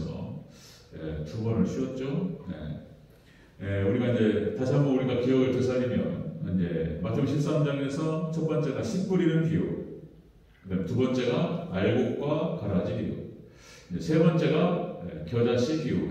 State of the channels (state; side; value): identical; both; correlation 1.00